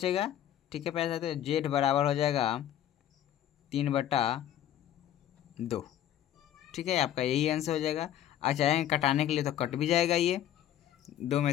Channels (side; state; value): right; quieter; 11.5 dB